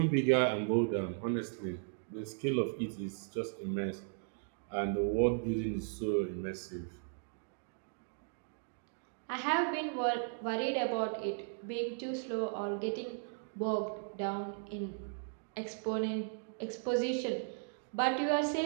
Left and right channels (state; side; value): silent; left; digital silence